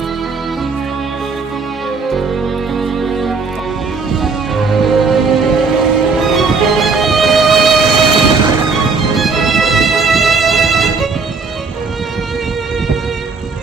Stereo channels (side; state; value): left; quieter; 4.5 dB